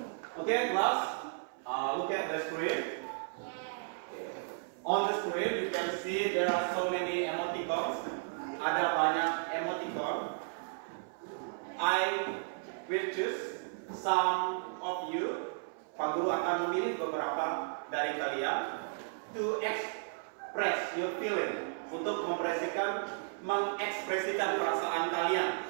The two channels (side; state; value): left; silent; 55 dB below the other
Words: Oke, kelas. Look at the screen. Okay. On the screen, you can see there are so many emoticons. Ada banyak emoticon. I will choose some of you. Pak Guru akan memilih beberapa dari kalian to express your feeling, untuk mengekspresikan perasaan kalian